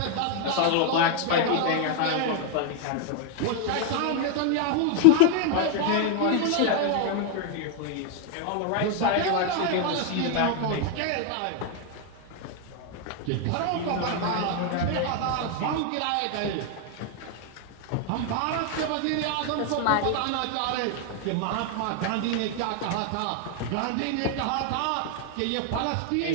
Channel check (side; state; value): both; different; correlation 0.01